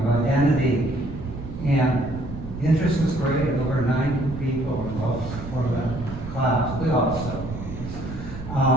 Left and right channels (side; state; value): right; noise; rumble, 10 dB below the sound